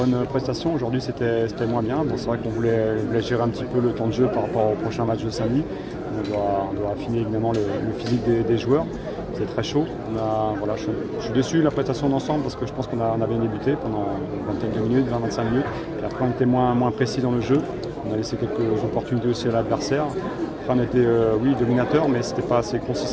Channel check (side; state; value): both; identical; correlation 1.00